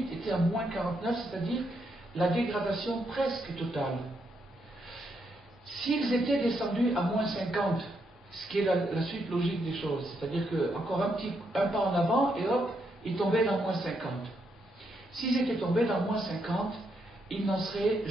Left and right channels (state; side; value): normal; both; correlation 0.78